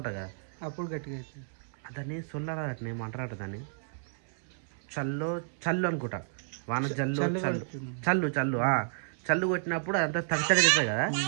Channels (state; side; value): silent; left; 57 dB below the other